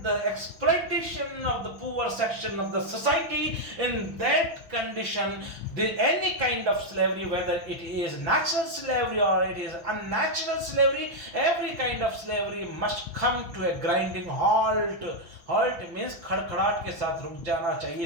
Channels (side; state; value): left; late; 5.9 ms